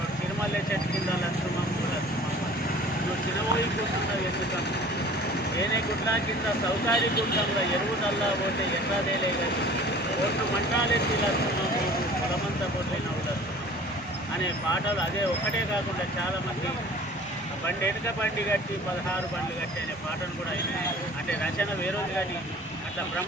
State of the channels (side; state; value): right; noise; hum, 28 dB below the sound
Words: తిరుమల చెట్టు కింద లక్ష్మమ్మ నువ్వు చిన్నబోయి కూర్చున్నావు ఎందుకమ్మ, ఏనే గుడ్ల కింద సౌకారి గుడ్డంలో ఎరువు నల్లా పోతే ఎర్రదేలే కానీ ఓట్లు మంటాలెత్తి లక్ష్మమ్మ పొలమంతా పోట్లైనవు లక్ష్మమ్మ అనే పాటలు అదే ఒక్కటే కాకుండా చాలామంది బండి వెనుక బండి కట్టి 16 బండ్లు కట్టి అనే పాటను కూడా ఆయన అంటే రచన వేరేది కానీ అట్లా